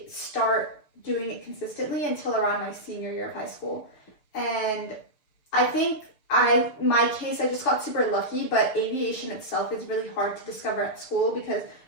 start doing it consistently until around my senior year of high school. And I think my case, I just got super lucky, but aviation itself is really hard to discover at school because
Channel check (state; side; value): late; right; 6.7 ms